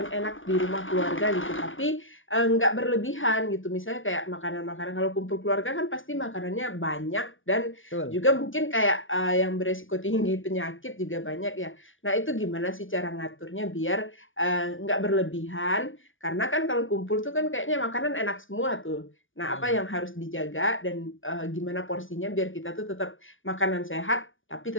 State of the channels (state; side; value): late; right; 0.57 ms